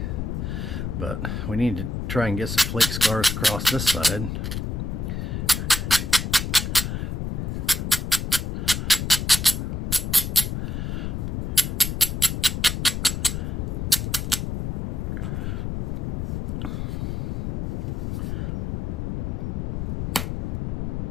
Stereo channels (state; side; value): noise; left; rumble, 2 dB below the sound